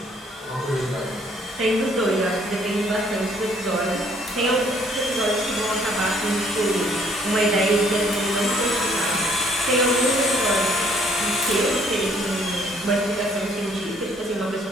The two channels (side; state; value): both; normal; correlation 0.62